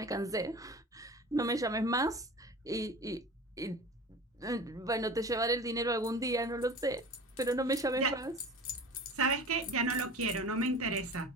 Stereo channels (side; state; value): both; normal; correlation 0.37